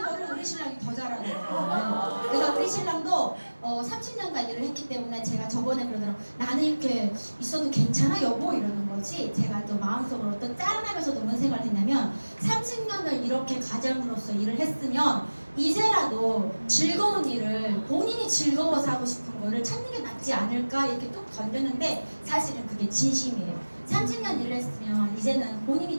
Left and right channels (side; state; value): both; inverted; correlation -1.00